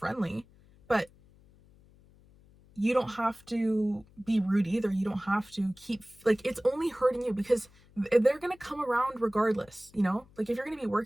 but you don't have to be rude either. You don't have to keep, like, it's only hurting you because they're going to come around regardless, you know? Like, if you're going to be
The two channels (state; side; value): noise; left; hum, 27 dB below the sound